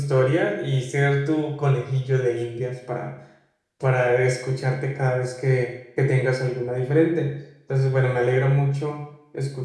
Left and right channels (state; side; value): identical; both; correlation 1.00